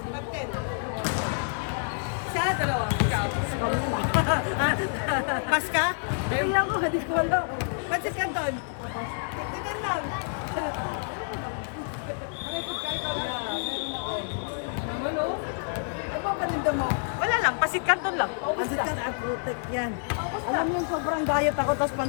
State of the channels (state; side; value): silent; right; 59 dB below the other